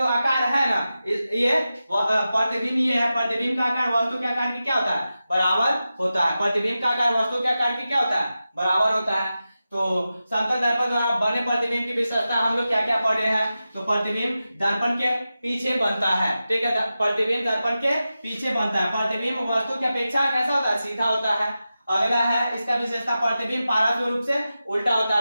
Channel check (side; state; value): both; inverted; correlation -0.93